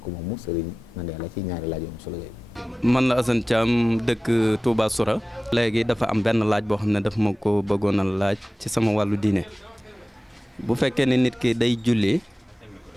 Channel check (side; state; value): both; normal; correlation 0.96